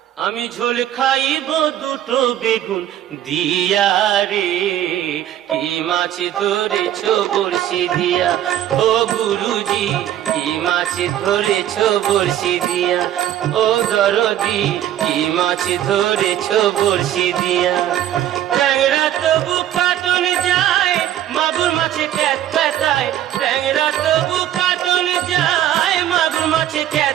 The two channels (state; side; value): quieter; left; 11.8 dB